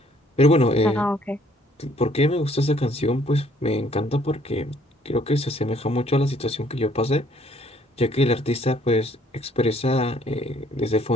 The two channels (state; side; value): normal; both; correlation 0.63